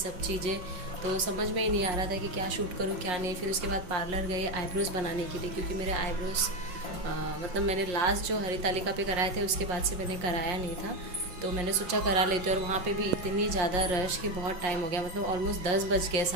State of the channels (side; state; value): left; late; 5.5 ms